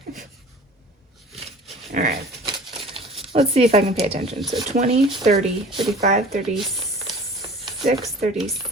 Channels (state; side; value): normal; both; correlation 0.45